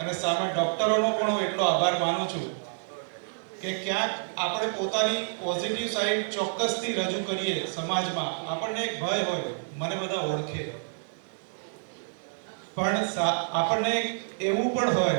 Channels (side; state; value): left; silent; digital silence